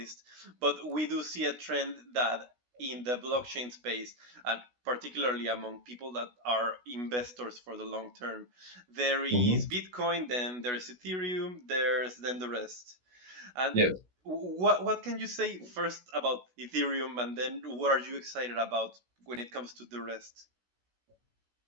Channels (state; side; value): late; left; 16 ms